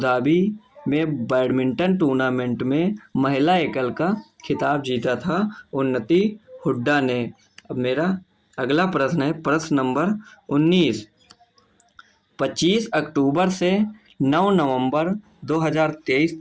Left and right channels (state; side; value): identical; both; correlation 1.00